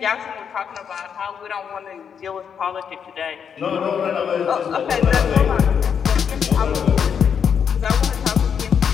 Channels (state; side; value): quieter; right; 7.4 dB